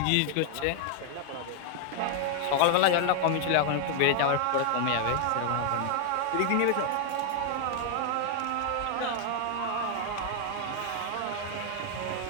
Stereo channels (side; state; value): both; different; correlation 0.00